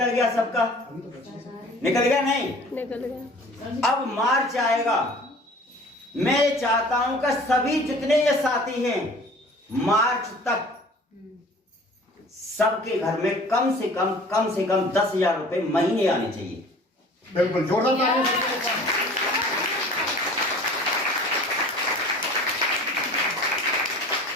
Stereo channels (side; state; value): both; normal; correlation 0.46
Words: गया, सबका निकल गया, नहीं निकल गया। अब मार्च आएगा। मैं ये चाहता हूं कि सभी जितने ये साथी हैं मार्च तक सबके घर में कम से कम 10,000 रुपए महीने आने चाहिए। बिल्कुल जोरदार तालियां।